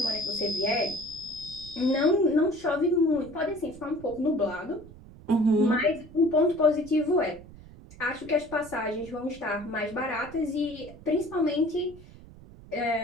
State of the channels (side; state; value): right; noise; rumble, 19 dB below the sound